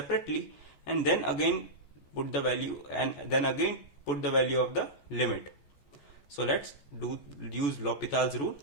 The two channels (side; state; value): right; late; 14 ms